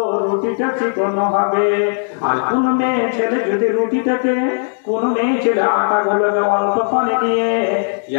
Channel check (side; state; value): right; silent; 68 dB below the other